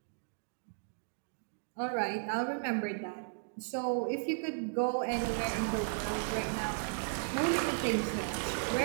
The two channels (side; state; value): left; silent; digital silence